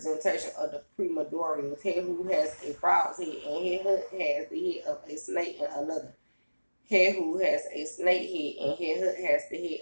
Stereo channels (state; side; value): inverted; both; correlation -1.00